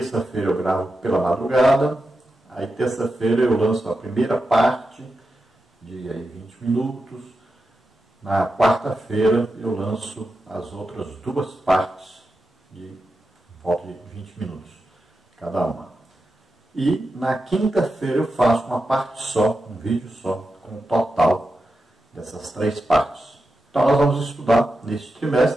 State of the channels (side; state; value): both; normal; correlation 0.89